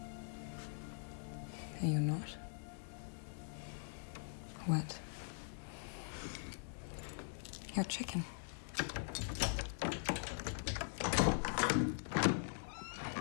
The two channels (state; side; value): silent; right; digital silence